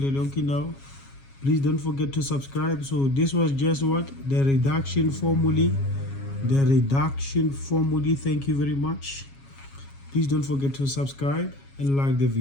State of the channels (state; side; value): late; right; 7.3 ms